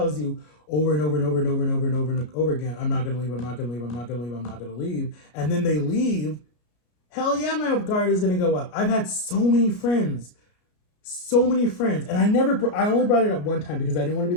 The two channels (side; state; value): right; late; 33 ms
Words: you over and over and over and over and over and over and over again, I'm not going to leave, I'm not going to leave, I'm not going to leave, I'm not going to leave, and then they leave, hell yeah, my guard is going to go up. I've had so many friends, and I only brought it up one time because I didn't want to